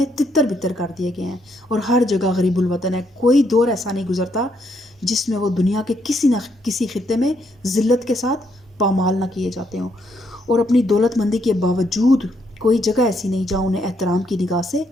تتر بتر کر دیے گئے ہیں اور ہر جگہ غریب الوطن ہے. کوئی دور ایسا نہیں گزرتا جس میں وہ دنیا کے کسی نہ کسی خطے میں ذلت کے ساتھ پامال نہ کیے جاتے ہوں، اور اپنی دولت مندی کے باوجود کوئی جگہ ایسی نہیں جہاں انہیں احترام کی نگاہ سے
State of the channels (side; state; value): both; normal; correlation 0.75